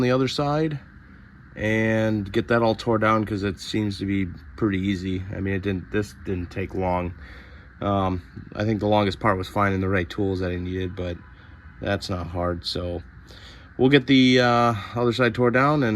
the other side and get that all tore down, because it seems to be pretty easy. I mean, this didn't take long. I think the longest part was finding the right tools that I needed, but that's not hard. So we'll get the other side tore down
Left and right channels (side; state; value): both; identical; correlation 1.00